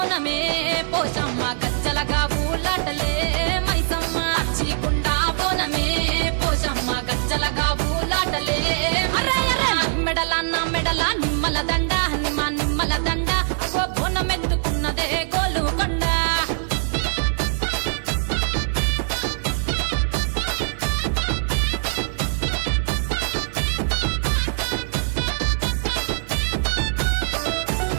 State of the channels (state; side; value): silent; left; 58 dB below the other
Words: పోషమ్మ గజ్జలగా ఊలాటలే మైసమ్మ పచ్చి కుండా బోనమే పోషమ్మ గజ్జలగా ఊలాటలే అరే అరే మెడల నా మెడల నిమ్మల దండ నిమ్మల దండ అగో బోనమెత్తుకున్నదే గోలుకొండ